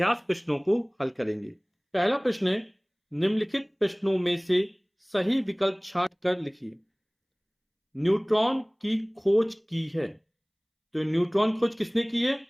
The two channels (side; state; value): both; identical; correlation 1.00